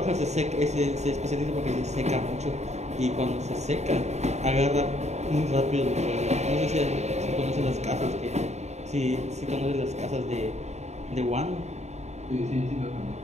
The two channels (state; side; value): late; left; 0.32 ms